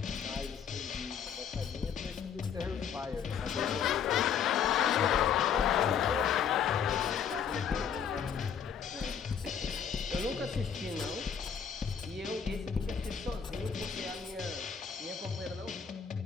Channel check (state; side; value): quieter; right; 7.6 dB